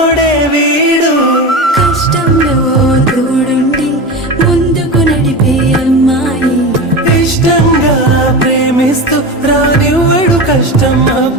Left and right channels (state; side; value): normal; both; correlation 0.25